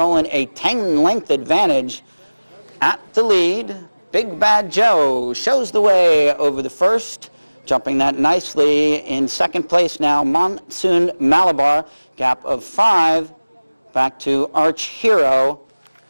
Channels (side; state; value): both; inverted; correlation -1.00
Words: a 10-length advantage at the lead. Big Bad Joe shows the way over the first, jumping that nicely. In second place now, Monsoon Malabar, gap of 5, back to Arch Hero,